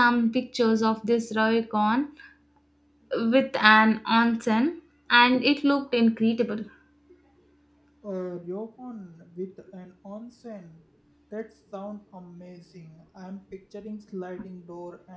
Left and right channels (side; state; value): both; identical; correlation 1.00